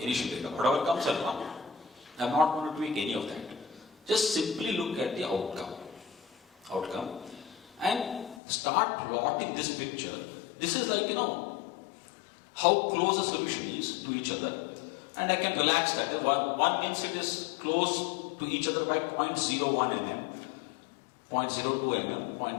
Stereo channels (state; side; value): drops out; right; at 8.4 s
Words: data. Whatever comes, I'll run. I'm not going to tweak any of that. Just simply look at the outcome. And start plotting this picture. This is like, how close the solution is to each other. And I can relax that. One means it is close to each other by 0.01 mm, 0.02 mm,